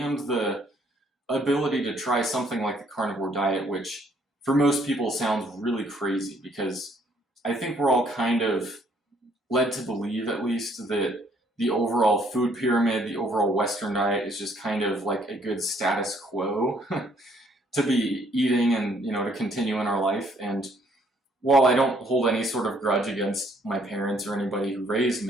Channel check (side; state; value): both; normal; correlation 0.65